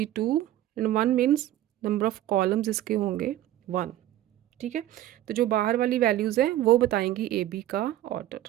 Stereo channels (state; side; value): quieter; left; 13.6 dB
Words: 2 and 1 means number of columns इसके होंगे 1, ठीक है। तो जो बाहर वाली वैल्यूज़ हैं वो बताएंगी ए बी का